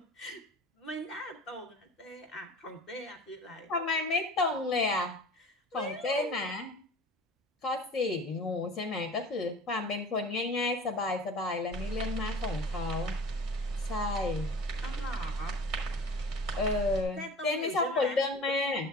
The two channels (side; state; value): both; normal; correlation 0.41